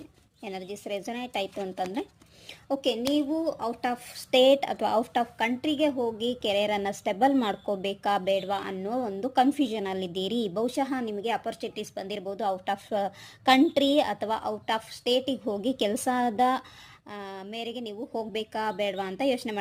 ಎನರ್ಜೀಸ್ ರೆಸನೇಟ್ ಆಯಿತು ಅಂತಂದರೆ ಓಕೆ, ನೀವು ಔಟ್ ಆಫ್ ಸ್ಟೇಟ್ ಅಥವಾ ಔಟ್ ಆಫ್ ಕಂಟ್ರಿಗೆ ಹೋಗಿ ಕೆರಿಯರನ್ನು ಸ್ಟೆಬಲ್ ಮಾಡ್ಕೋಬೇಕಾ ಬೇಡವಾ ಅನ್ನೋ ಒಂದು ಕನ್ಫ್ಯೂಷನಲ್ಲಿದ್ದೀರಿ. ಬಹುಶಃ ನಿಮಗೆ ಅಪರ್ಚುನಿಟೀಸ್ ಬಂದಿರ್ಬೋದು ಔಟ್ ಆಫ್ ಕಂಟ್ರಿ ಅಥವಾ ಔಟ್ ಆಫ್ ಸ್ಟೇಟಿಗೆ ಹೋಗಿ ಕೆಲಸದ ಮೇರೆಗೆ ನೀವು ಹೋಗಬೇಕಾ ಬೇಡವಾ ಅಂತ ಯೋಚನೆ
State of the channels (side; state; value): both; identical; correlation 1.00